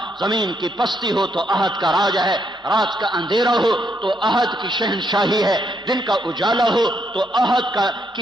زمین کی پستی ہو تو احد کا راج ہے، رات کا اندھیرا ہو تو احد کی شہنشاہی ہے، دن کا اجالا ہو تو احد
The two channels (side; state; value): both; normal; correlation 0.75